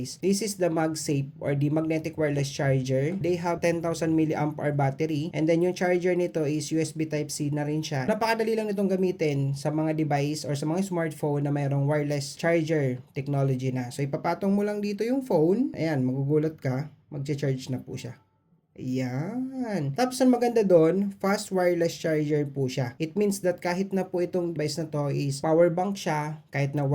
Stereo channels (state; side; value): identical; both; correlation 1.00